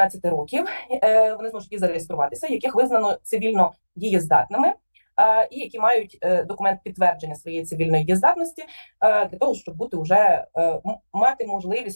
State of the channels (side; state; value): both; inverted; correlation -1.00